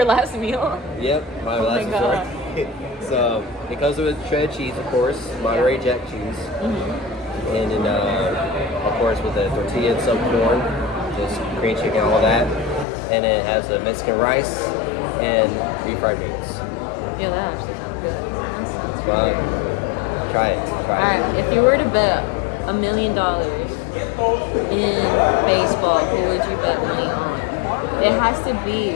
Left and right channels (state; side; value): drops out; right; at 12.9 s